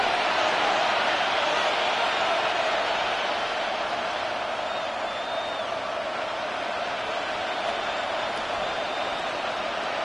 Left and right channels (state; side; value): identical; both; correlation 1.00